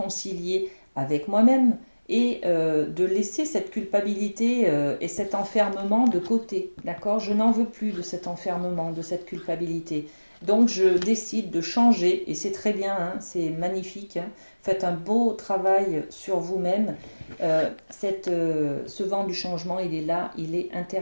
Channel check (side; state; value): both; inverted; correlation -1.00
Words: avec moi-même et de laisser cette culpabilité et cet enfermement de côté. D'accord? Je n'en veux plus de cet enfermement, de cette culpabilité. Donc je décide de changer et c'est très bien, hein, c'est magnifique, hein. Faites un beau travail sur vous-même. Ce vent du changement, il est là, il est